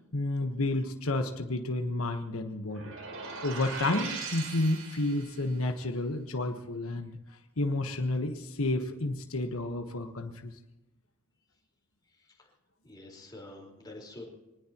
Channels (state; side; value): normal; both; correlation 0.55